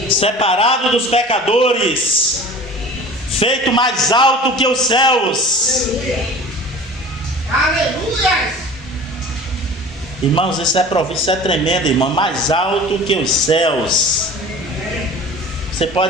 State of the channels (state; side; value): normal; both; correlation 0.41